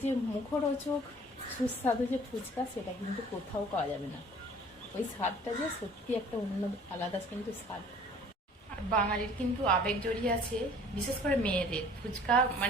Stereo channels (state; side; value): normal; both; correlation 0.51